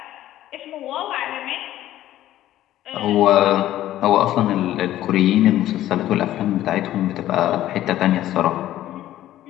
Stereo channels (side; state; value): right; quieter; 13.5 dB